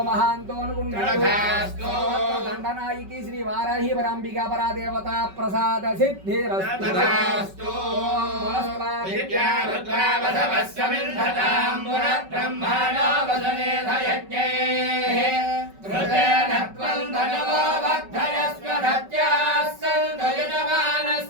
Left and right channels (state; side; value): late; left; 5.3 ms